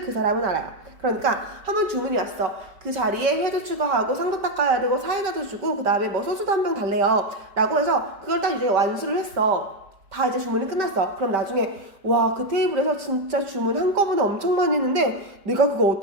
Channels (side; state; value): left; late; 5.2 ms